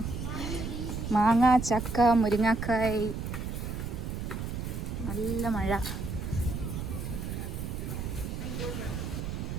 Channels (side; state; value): right; noise; rumble, 4 dB below the sound